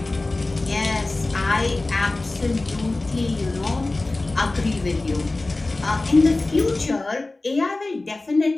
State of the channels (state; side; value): quieter; right; 3.0 dB